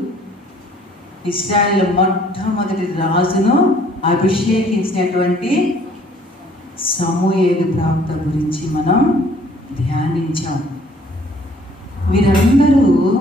ఇశ్రాయేలు మొట్టమొదటి రాజును అభిషేకించినటువంటి సమూయేలు ప్రవక్త గురించి మనం ధ్యానించాం. వీరందరూ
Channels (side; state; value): both; normal; correlation 0.58